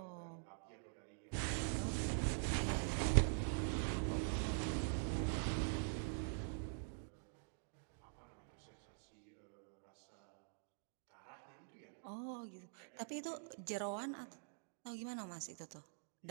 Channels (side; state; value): left; silent; digital silence